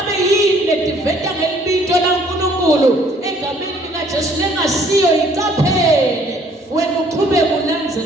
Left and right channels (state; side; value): normal; both; correlation 0.60